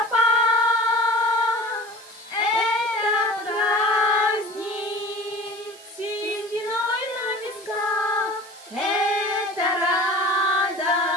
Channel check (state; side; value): noise; right; hiss, 21 dB below the sound